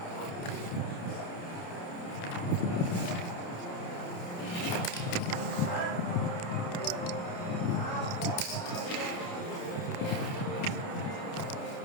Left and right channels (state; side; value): late; right; 29 ms